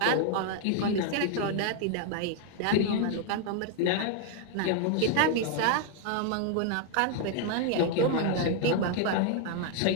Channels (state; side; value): different; both; correlation 0.00